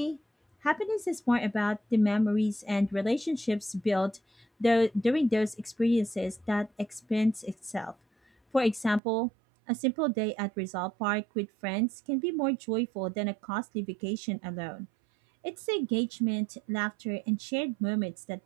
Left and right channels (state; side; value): drops out; left; at 9.0 s